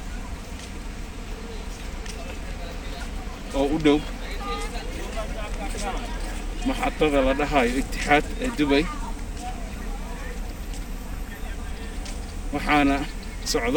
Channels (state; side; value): identical; both; correlation 1.00